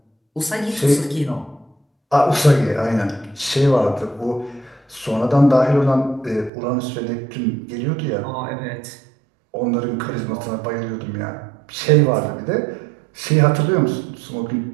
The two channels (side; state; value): left; drops out; at 6.5 s